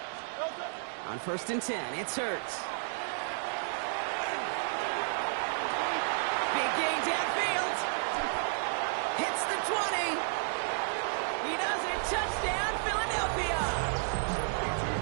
On 1st and 10, it's Hurts. Big gain downfield. Hits the 20. He does it. Touchdown, Philadelphia.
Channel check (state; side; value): silent; left; digital silence